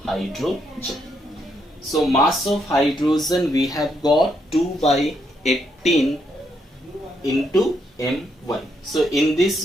hydrogen. So mass of hydrogen we have got 2 by 18 into M1. So in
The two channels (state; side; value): normal; both; correlation 0.76